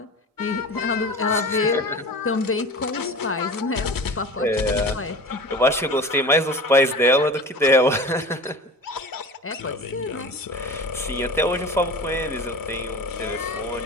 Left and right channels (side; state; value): both; normal; correlation 0.35